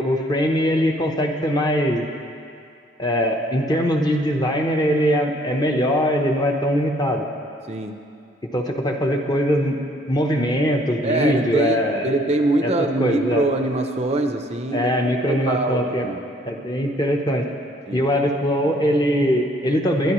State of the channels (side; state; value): both; normal; correlation 0.62